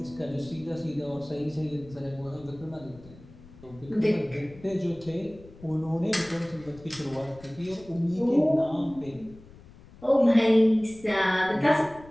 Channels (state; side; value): noise; left; rumble, 21 dB below the sound